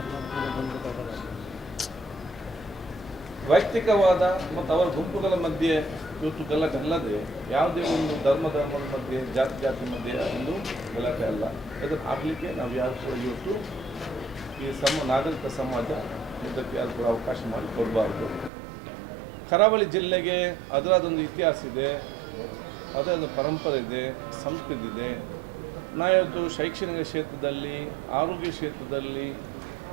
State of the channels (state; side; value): drops out; left; at 18.5 s